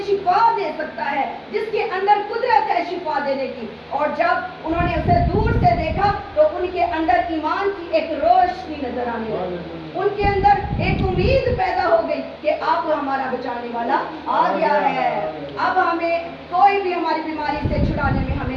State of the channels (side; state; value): both; identical; correlation 1.00